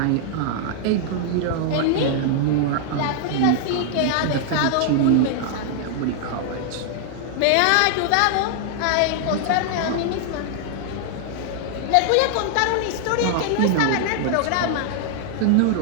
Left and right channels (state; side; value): different; both; correlation 0.00